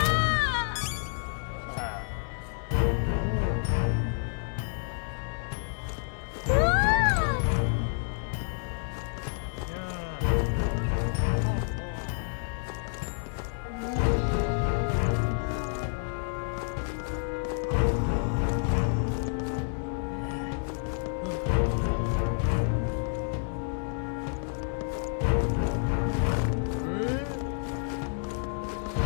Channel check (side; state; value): right; silent; 58 dB below the other